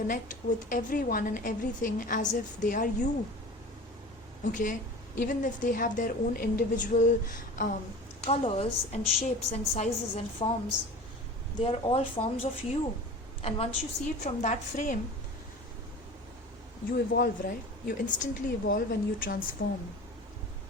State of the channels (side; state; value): both; normal; correlation 0.37